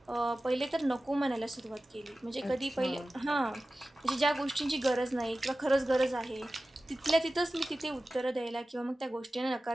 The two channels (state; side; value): normal; both; correlation 0.96